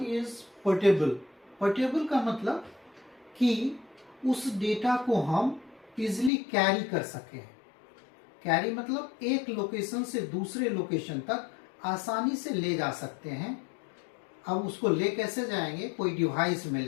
portable. Portable का मतलब कि उस डेटा को हम इजिली कैरी कर सकें। कैरी मतलब एक लोकेशन से दूसरे लोकेशन तक आसानी से ले जा सकते हैं। अब उसको ले कैसे जाएंगे? कोई डिवाइस में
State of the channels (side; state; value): right; drops out; at 6.3 s